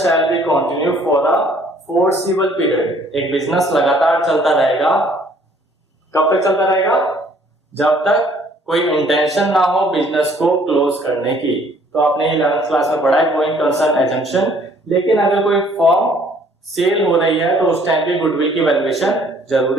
shall be continue for a forcible period, एक बिजनेस लगातार चलता रहेगा, कब तक चलता रहेगा, जब तक कोई इंटेंशन ना हो बिजनेस को क्लोज करने की। तो आपने 11th क्लास में पढ़ा है गोइंग कंसर्न एजम्पशन। लेकिन अगर कोई फर्म सेल हो रही है तो उस टाइम पे गुडविल की वैल्यूएशन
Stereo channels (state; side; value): normal; both; correlation 0.60